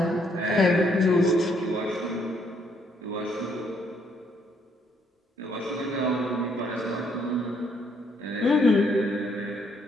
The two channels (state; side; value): normal; both; correlation 0.70